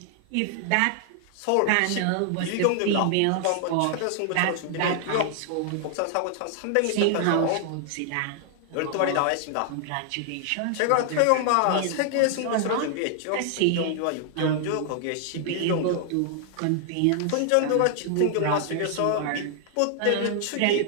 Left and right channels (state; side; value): different; both; correlation 0.00